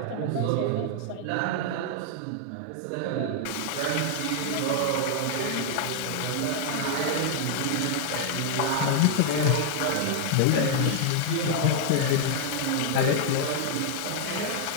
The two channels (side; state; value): both; different; correlation -0.01